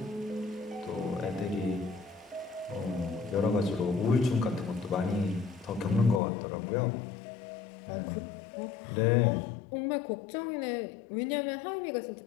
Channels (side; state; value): right; drops out; at 6.2 s